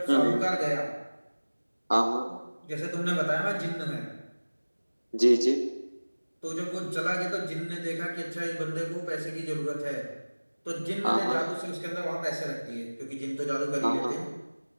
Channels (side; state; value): both; inverted; correlation -1.00